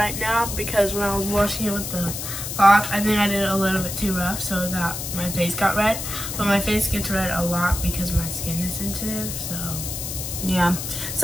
now, because when I was washing it with the lock. I think I did it a little bit too rough, so my face got red. But my face gets red a lot because my skin is sensitive, so. Yeah.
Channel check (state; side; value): noise; left; hiss, 6 dB below the sound